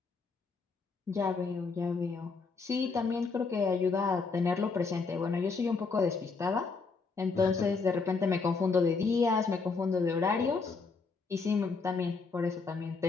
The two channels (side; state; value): right; quieter; 4.5 dB